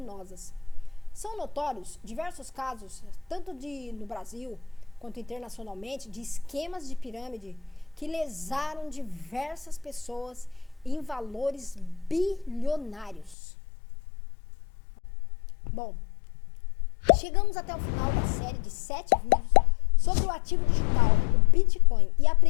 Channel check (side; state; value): right; drops out; at 13.4 s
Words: São notórios diversos casos, tanto no Brasil quanto internacionalmente, de esquemas de pirâmide que lesaram diversas pessoas em valores bilionários. Bom, chegamos até o final da série de 7 vídeos sobre o ativo digital, o Bitcoin, e